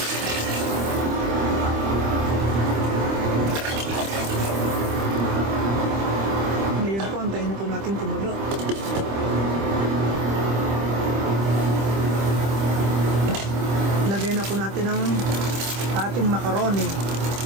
Ngayon po, antayin na po natin kumulo. Lagay na po natin ang ating macaroni.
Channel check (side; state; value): left; late; 25 ms